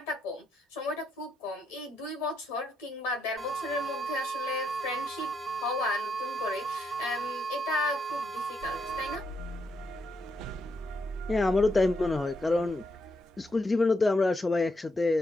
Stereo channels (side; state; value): both; normal; correlation 0.79